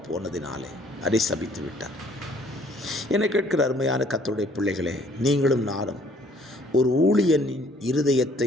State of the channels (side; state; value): both; normal; correlation 0.60